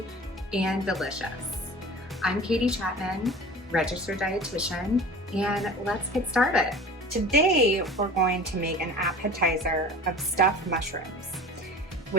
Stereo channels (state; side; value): normal; both; correlation 0.38